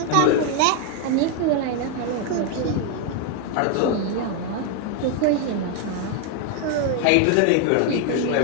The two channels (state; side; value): different; both; correlation 0.01